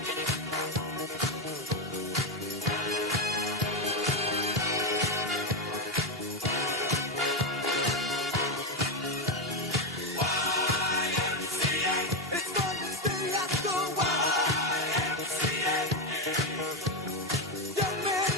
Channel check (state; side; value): normal; both; correlation 0.10